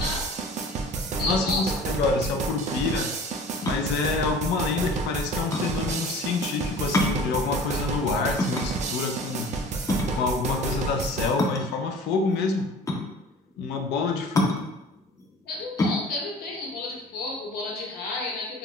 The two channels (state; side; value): normal; both; correlation 0.43